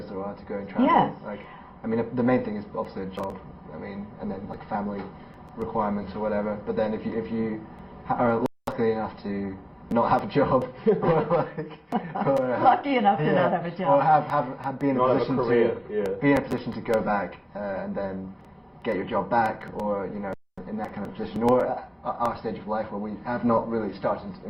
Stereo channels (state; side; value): identical; both; correlation 1.00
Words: there are to go and travel. Yes. Like, I mean, the main thing is obviously a job. I mean, and then like family requirements or whatever. But then if you are lucky enough to not have a job, or Lucky enough to not have a job. or have be in a Not have a position career, to yeah. be in a position to go back and then get your job back, or in that kind of position, or at our stage of life where we have not really started